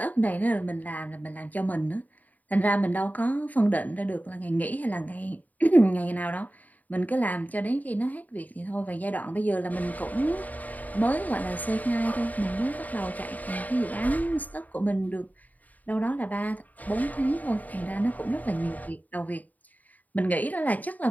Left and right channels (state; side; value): late; right; 0.078 ms